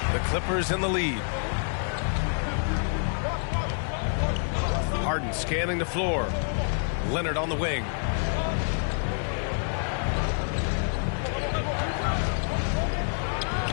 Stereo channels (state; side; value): silent; right; 60 dB below the other